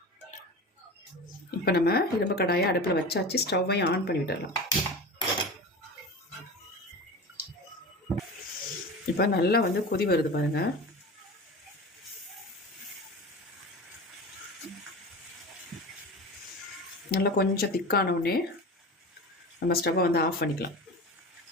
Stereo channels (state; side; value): normal; both; correlation 0.31